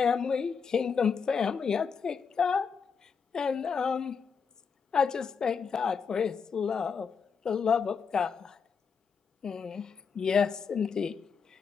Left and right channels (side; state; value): right; quieter; 6.0 dB